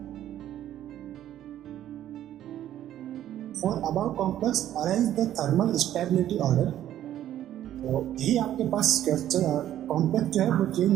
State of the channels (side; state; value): left; quieter; 11.9 dB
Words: for above complex arrange the thermal stability order. तो यही आपके पास क्वेश्चन, कॉम्प्लेक्स जो है वो चेंज